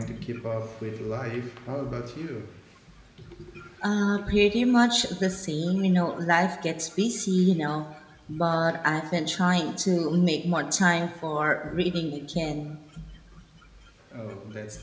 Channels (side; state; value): both; identical; correlation 1.00